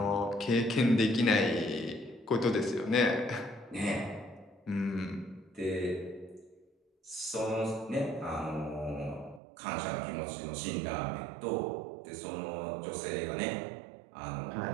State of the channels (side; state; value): left; drops out; at 9.4 s